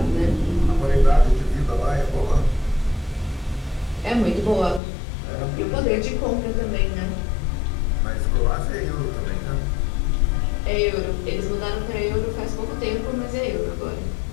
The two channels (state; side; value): drops out; right; at 4.8 s